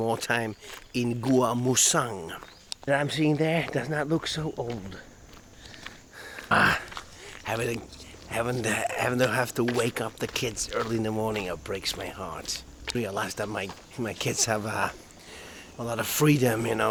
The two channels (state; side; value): identical; both; correlation 1.00